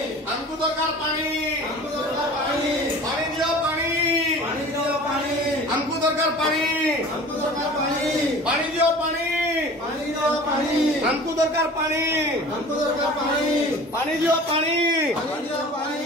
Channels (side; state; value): both; normal; correlation 0.42